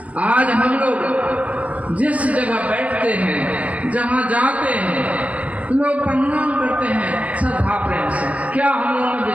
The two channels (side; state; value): left; late; 0.067 ms